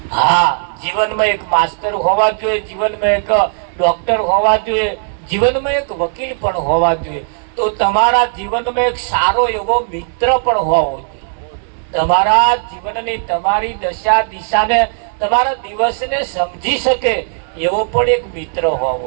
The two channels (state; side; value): silent; left; digital silence